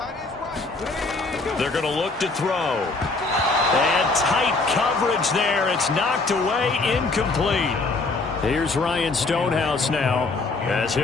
They're going to look to throw. And tight coverage there. It's knocked away, incomplete. Here's Ryan Stonehouse now, as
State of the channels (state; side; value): quieter; right; 3.6 dB